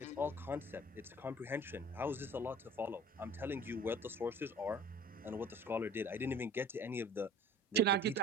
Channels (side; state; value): both; normal; correlation 0.46